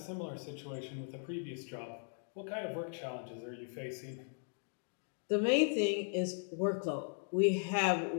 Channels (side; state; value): right; silent; 52 dB below the other